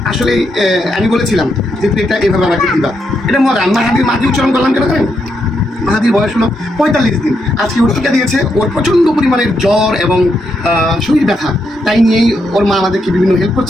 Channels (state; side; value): normal; both; correlation 0.80